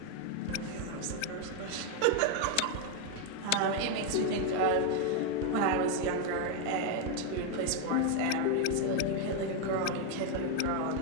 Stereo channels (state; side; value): different; both; correlation 0.01